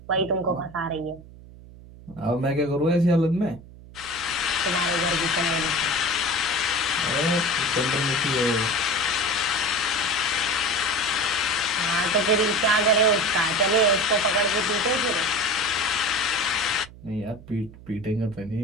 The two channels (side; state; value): right; noise; hum, 19 dB below the sound